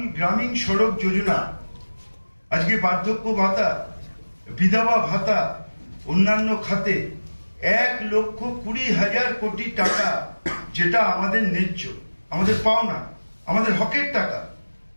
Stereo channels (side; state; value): both; inverted; correlation -1.00